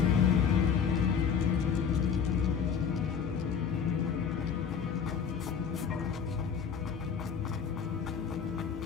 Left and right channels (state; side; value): quieter; right; 6.8 dB